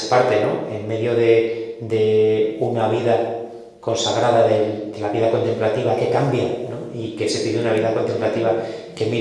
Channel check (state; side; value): identical; both; correlation 1.00